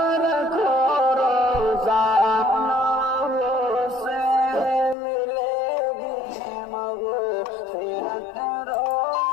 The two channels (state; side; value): drops out; right; at 5.0 s